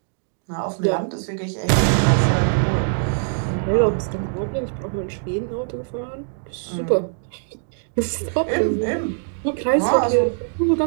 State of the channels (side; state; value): left; silent; digital silence